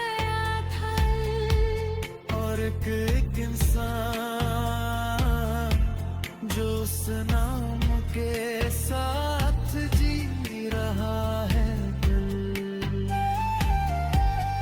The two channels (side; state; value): both; identical; correlation 1.00